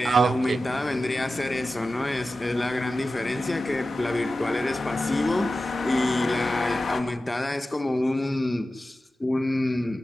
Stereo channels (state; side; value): normal; both; correlation 0.93